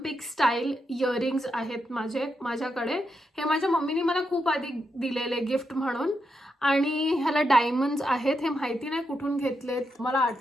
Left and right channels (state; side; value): normal; both; correlation 0.84